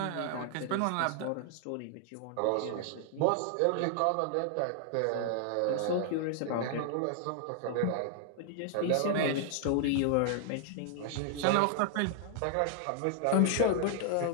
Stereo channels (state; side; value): different; both; correlation -0.01